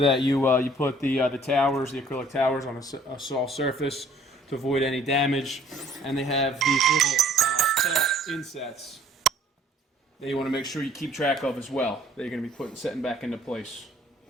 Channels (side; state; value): both; normal; correlation 0.57